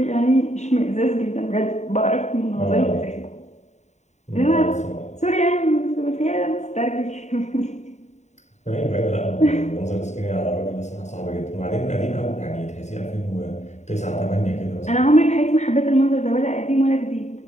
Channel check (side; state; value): right; late; 0.34 ms